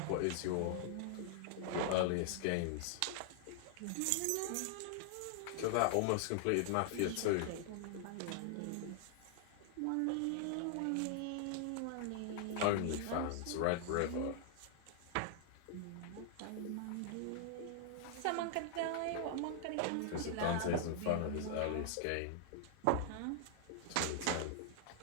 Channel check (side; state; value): both; different; correlation -0.01